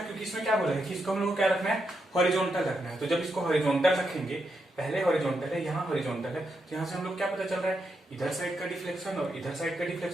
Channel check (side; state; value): both; normal; correlation 0.83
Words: क्योंकि इसमें क्या बोला है कि इसको हम लोग को क्या रखना है, हॉरिजॉन्टल रखना है। तो जब इसको हॉरिजॉन्टल रखेंगे, पहले हॉरिजॉन्टल है, यहाँ हॉरिजॉन्टल है, तो यहाँ से हम लोग क्या पता चल रहा है, इधर साइड का डिफ्लेक्शन और इधर साइड का